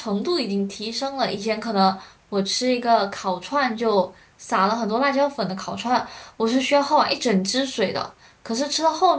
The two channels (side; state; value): both; identical; correlation 1.00